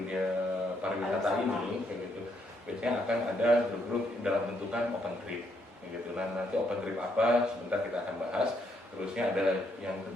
pariwisata ini kayak gitu. Biasanya akan ada grup-grup dalam bentukan open trip kayak gitu. Nah, nanti open trip apa sebentar kita akan bahas. Terusnya ada yang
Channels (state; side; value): normal; both; correlation 0.74